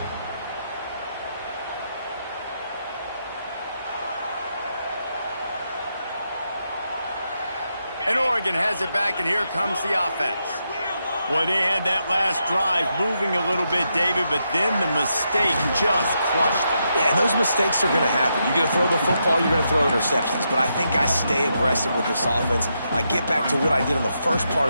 And Oregon has it back, and here comes the offense. Boy, they had that last drive moving a little bit, David, but then the mistake just crushed them. Yeah, and those mistakes are going to happen. You're going to throw the football, you're going to throw interceptions. But I think I stay aggressive with this offense. I get back to what I did on the first part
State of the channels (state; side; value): inverted; both; correlation -0.82